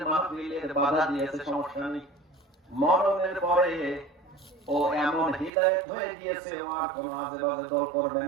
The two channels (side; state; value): left; drops out; at 5.5 s